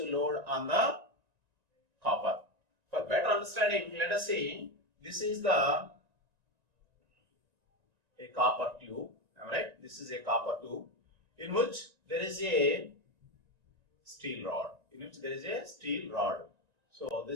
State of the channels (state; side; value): late; left; 1.9 ms